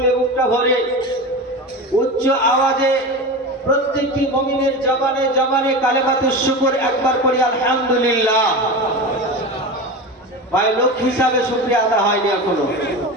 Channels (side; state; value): both; normal; correlation 0.26